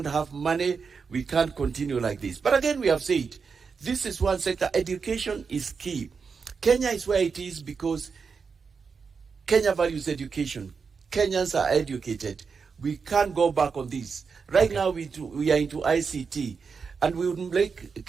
have money. We can't continue like this. But again, we have said, this is one sector. Education is key. Kenya is where it is because Kenya values education. Kenyans are educated. We can't go back on this. Right now, we are into ICT, and we would like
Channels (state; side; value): quieter; left; 5.5 dB